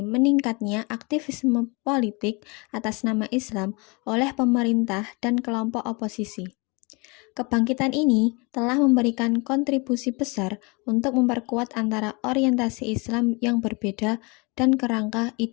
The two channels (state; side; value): quieter; right; 28.7 dB